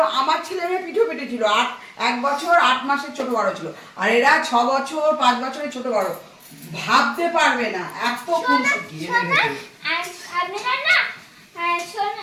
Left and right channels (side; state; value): both; identical; correlation 1.00